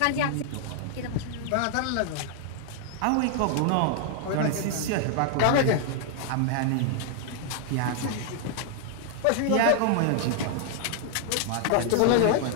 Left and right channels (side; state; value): both; different; correlation 0.00